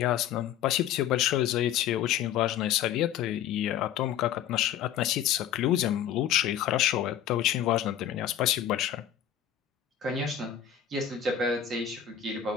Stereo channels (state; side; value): quieter; right; 10.0 dB